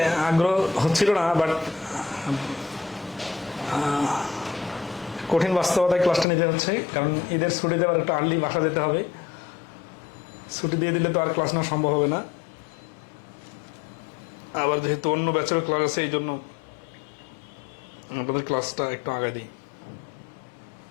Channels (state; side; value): drops out; right; at 6.2 s